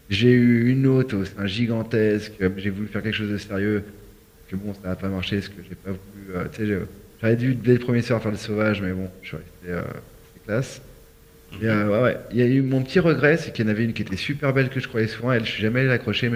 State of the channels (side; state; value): both; identical; correlation 1.00